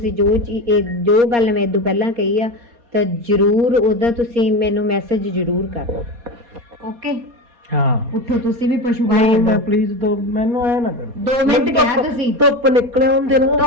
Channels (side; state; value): left; late; 4.2 ms